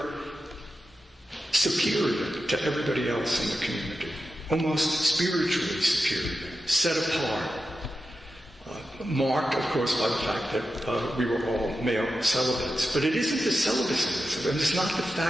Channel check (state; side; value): normal; both; correlation 0.90